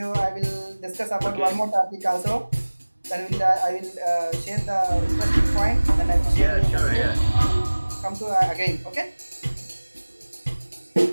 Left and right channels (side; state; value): both; inverted; correlation -1.00